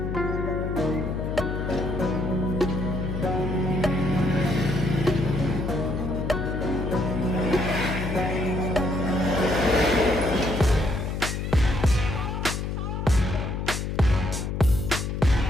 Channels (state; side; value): noise; left; hum, 3 dB below the sound